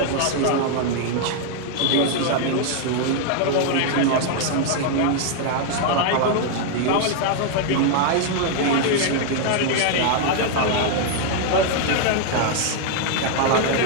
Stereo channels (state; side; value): different; both; correlation 0.00